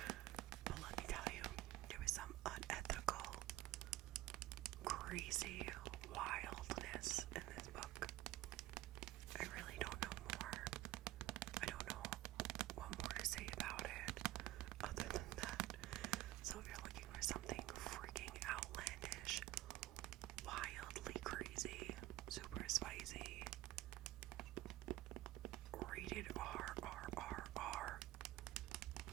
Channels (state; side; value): quieter; left; 16.2 dB